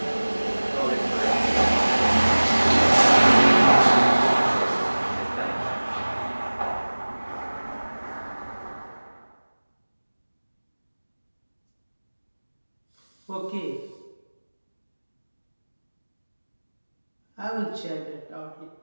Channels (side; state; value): both; inverted; correlation -1.00